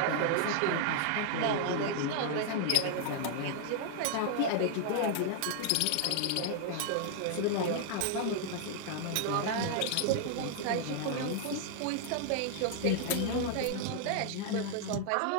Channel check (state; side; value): different; both; correlation -0.01